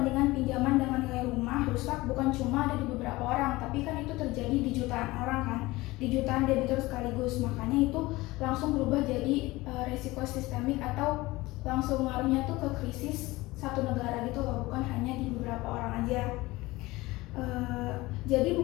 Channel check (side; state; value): right; quieter; 20.2 dB